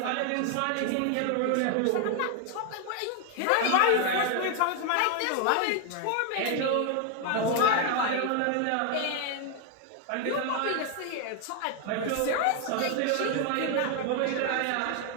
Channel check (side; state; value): both; different; correlation 0.01